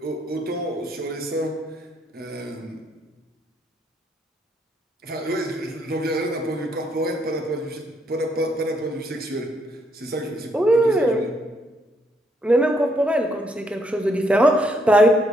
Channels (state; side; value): normal; both; correlation 0.72